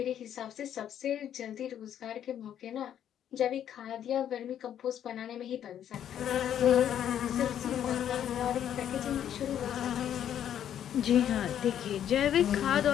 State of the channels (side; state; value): right; quieter; 10.0 dB